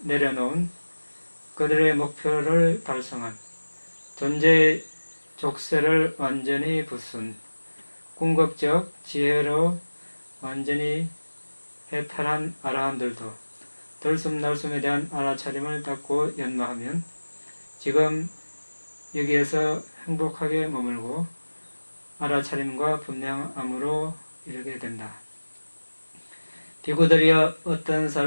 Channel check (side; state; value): both; inverted; correlation -1.00